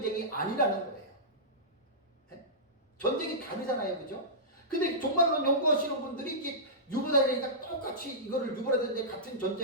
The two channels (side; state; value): both; normal; correlation -0.16